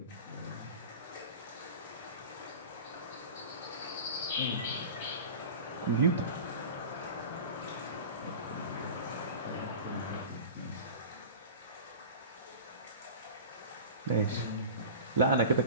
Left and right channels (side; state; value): both; inverted; correlation -0.35